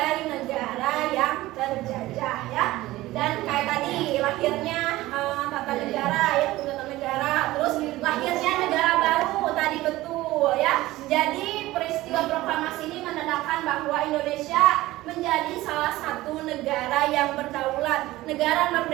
negara yang terjajah ya. Dan kayak tadi lahirnya tata negara ya, tata negara, terus lahirnya negara baru tadi betul ya. Jadi peristiwa proklamasi ini menandakan bahwa Indonesia menjadi salah satu negara yang berdaulat, negara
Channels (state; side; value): quieter; left; 17.5 dB